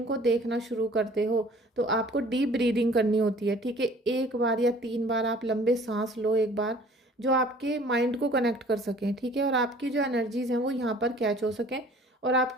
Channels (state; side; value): normal; both; correlation 0.51